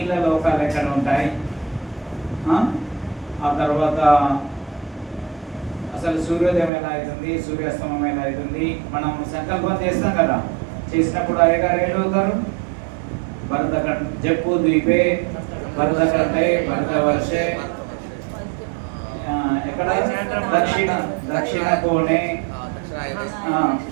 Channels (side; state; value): left; drops out; at 6.7 s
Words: లోకాలు ఎక్కడ ఉంటాయి, ఆ తర్వాత అసలు సూర్యోదయం ఎలా అవుతుంది, సూర్యాస్తమం ఎలా అవుతుంది. మనం సంకల్పం చేస్తాం కదా, చేసినప్పుడు అయ్యగారు ఏడవుతారు, భరత జప్పు ద్వీపే భరతకంఠే భరతవర్షే, ఎక్కడ దక్షిణ కోణే,